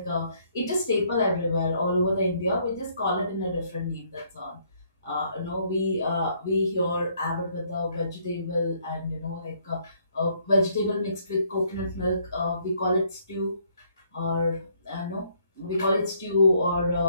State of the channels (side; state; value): both; inverted; correlation -0.68